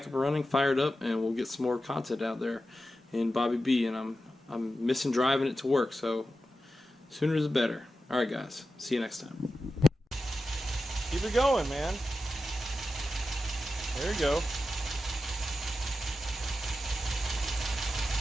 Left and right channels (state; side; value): normal; both; correlation 0.91